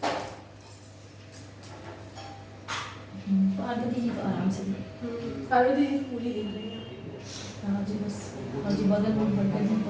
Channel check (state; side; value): identical; both; correlation 1.00